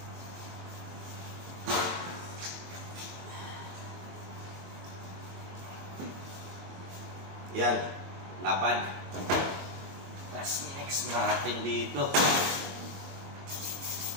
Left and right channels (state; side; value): late; left; 21 ms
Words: Yan, lapad. Tapos next natin dito.